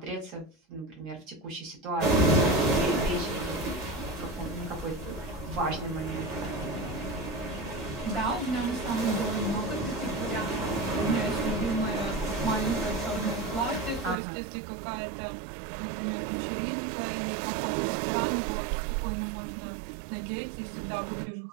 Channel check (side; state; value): left; drops out; at 14.2 s